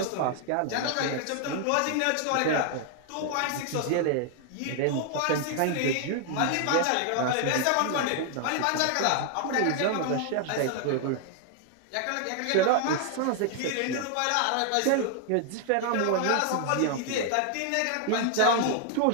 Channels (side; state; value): both; different; correlation 0.00